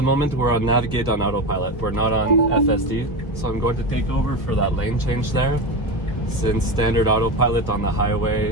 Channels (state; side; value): late; right; 1.2 ms